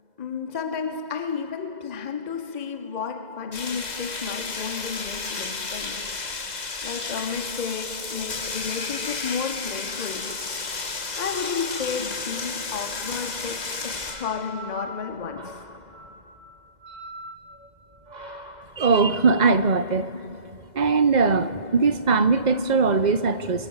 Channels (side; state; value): left; late; 2.0 ms